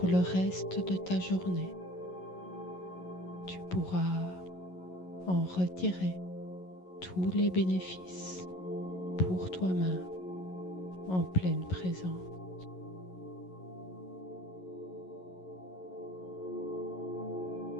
le reste de ta journée. Tu pourras en retirer tous les bénéfices pour toi-même en pleine présence.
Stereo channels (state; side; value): late; right; 11 ms